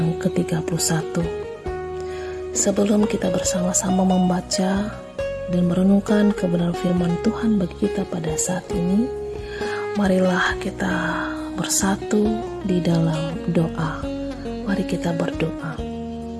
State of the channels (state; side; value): identical; both; correlation 1.00